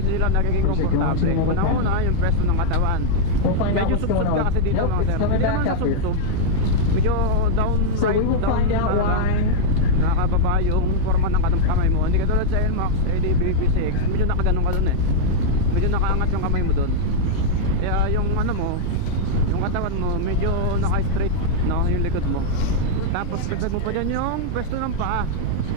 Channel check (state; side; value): different; both; correlation -0.01